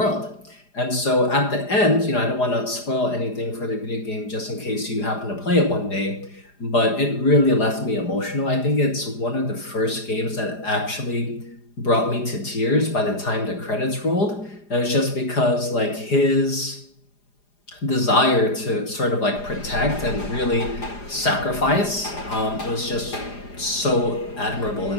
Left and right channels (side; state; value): right; late; 4.9 ms